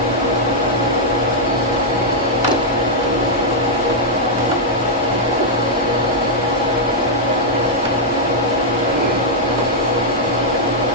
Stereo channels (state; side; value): normal; both; correlation -0.05